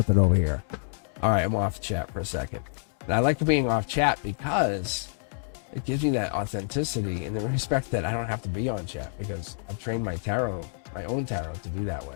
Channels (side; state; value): right; silent; digital silence